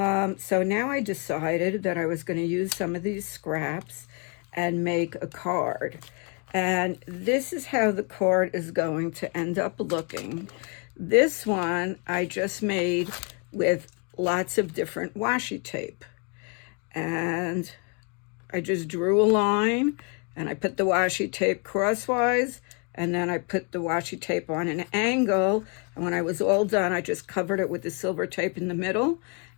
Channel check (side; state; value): right; quieter; 34.8 dB